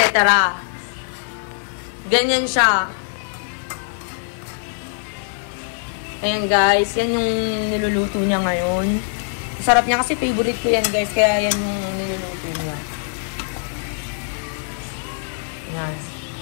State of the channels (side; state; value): right; silent; digital silence